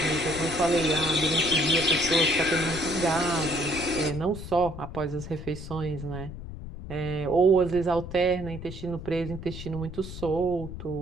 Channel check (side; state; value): left; noise; rumble, 11 dB below the sound